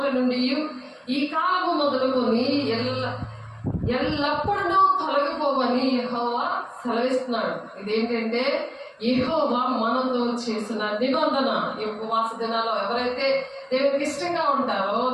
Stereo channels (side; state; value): both; identical; correlation 1.00